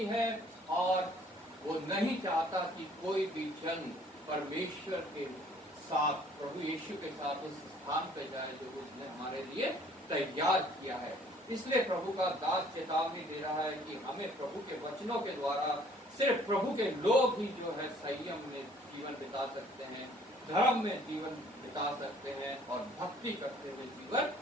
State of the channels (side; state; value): both; normal; correlation 0.58